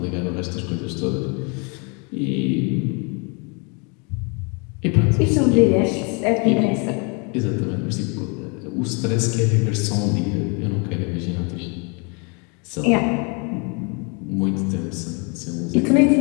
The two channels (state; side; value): quieter; right; 33.6 dB